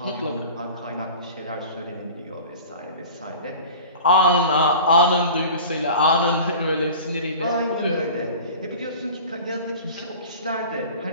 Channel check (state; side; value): inverted; both; correlation -0.39